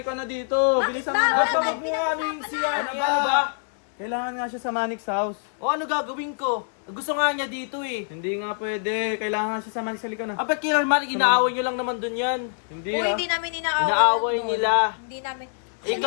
na dito. Bilisan mo na. Ba't ba wag mo nga ano yung siya? Ano Ano ba? Kailangan nga siya sa Manix House. O ano gagawin ko? Gusto nga niya dito eh. Hindi nga pwede. Kailangan nga siya sa Manix. Halika na. Ah, ba't kailangan inaaway nyo lang naman dun yan? Hindi Hoy, ah. hindi namin inaaway. Inaaway doon. nila. Hindi namin.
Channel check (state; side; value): silent; right; 62 dB below the other